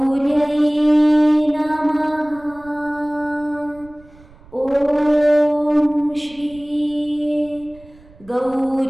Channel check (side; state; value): right; noise; rumble, 25 dB below the sound